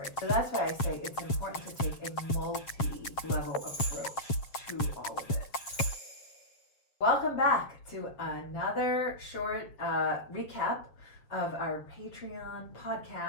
So that's why I say it's important to take a multi-level approach to all of it. Welcome back to another short recap of our Patreon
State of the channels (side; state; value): right; late; 7.4 ms